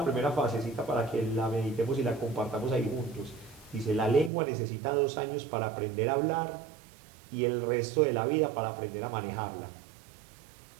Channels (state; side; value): drops out; left; at 4.3 s